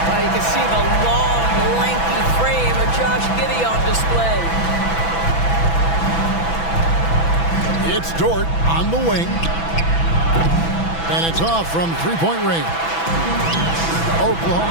Well, you can see the long, lanky frame of Josh Giddey on display. It's Dort on the wing. And it's off from three-point range.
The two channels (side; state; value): right; late; 6.0 ms